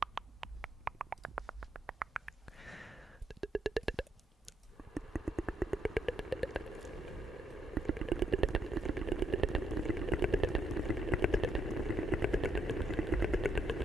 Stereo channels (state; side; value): normal; both; correlation 0.76